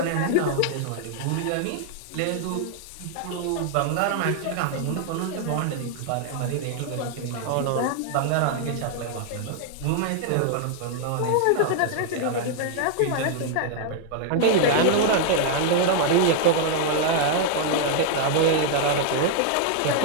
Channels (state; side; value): different; both; correlation -0.01